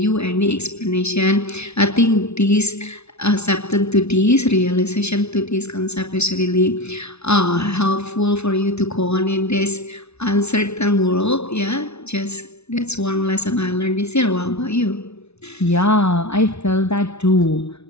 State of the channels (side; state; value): right; late; 0.81 ms